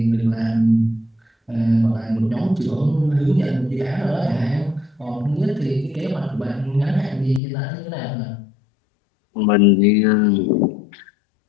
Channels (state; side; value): drops out; right; at 7.4 s